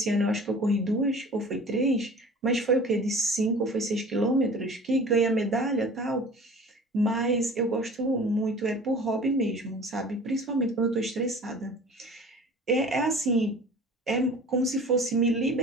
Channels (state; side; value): normal; both; correlation 0.43